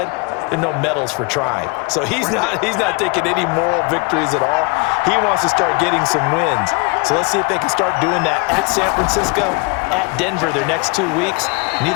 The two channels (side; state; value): right; quieter; 30.3 dB